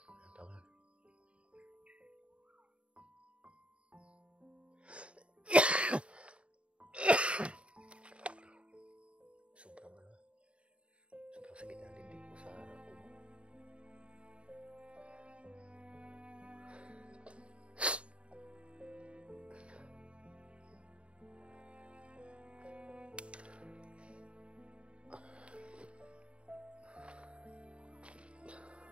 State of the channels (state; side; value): late; left; 0.060 ms